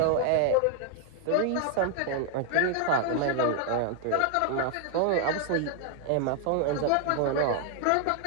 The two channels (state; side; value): different; both; correlation 0.00